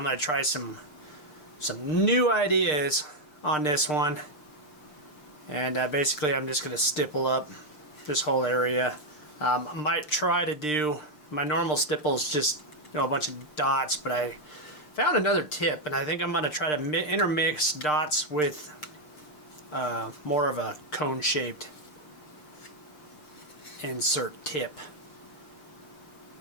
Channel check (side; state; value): right; late; 6.6 ms